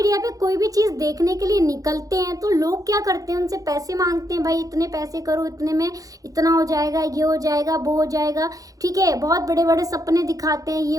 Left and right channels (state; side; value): late; left; 0.17 ms